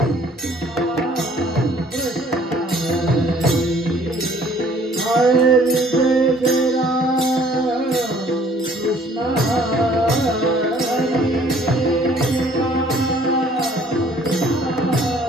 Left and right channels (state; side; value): normal; both; correlation 0.57